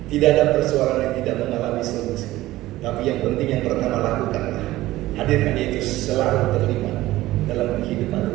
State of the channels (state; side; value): quieter; left; 16.7 dB